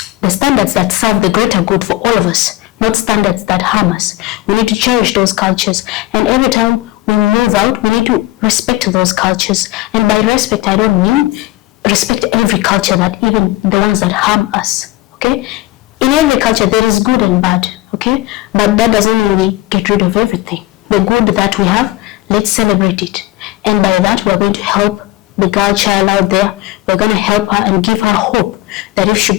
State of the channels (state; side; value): quieter; right; 17.6 dB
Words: the standards that serve the greater good for all of us, not standards that harm us. We need to cherish those cultures, and every time we move out, we need to respect those cultures. And by respect, I don't mean respect every culture, that even the ones that harm us, okay? In every culture, there is good and bad, okay? But that doesn't mean we get rid of everything. The good that we have, let's celebrate it. And by that, we're going to help the girl child out there. We're going to help her and give her hope that if she